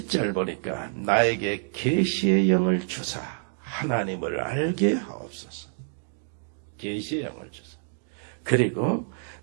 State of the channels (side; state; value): left; silent; digital silence